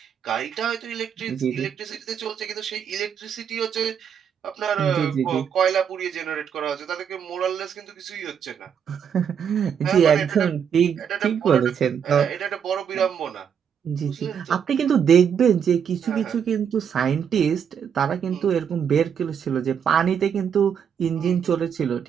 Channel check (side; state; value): left; quieter; 7.8 dB